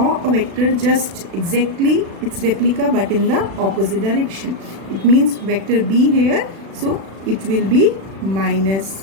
a vector just exactly its replica but in the opposite direction. It means vector B here, so it will be minus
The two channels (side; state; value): left; late; 36 ms